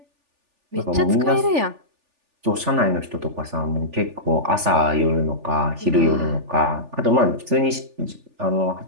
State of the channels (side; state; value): left; late; 3.4 ms